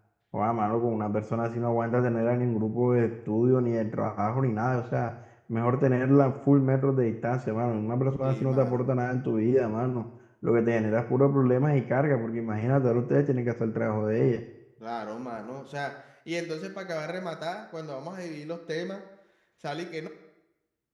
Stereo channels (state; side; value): identical; both; correlation 1.00